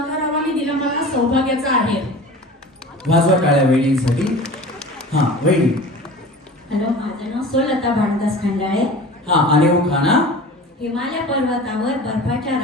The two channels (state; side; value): normal; both; correlation 0.38